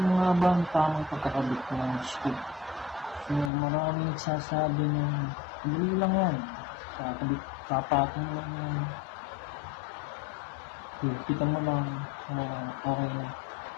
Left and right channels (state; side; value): drops out; right; at 3.5 s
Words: nga ba ang tamang pagkakabit ng scoop? So, maraming nagsasabi ng hindi lang yan. Kakabit, kapatong lang yan. Kita mo lang, okay na.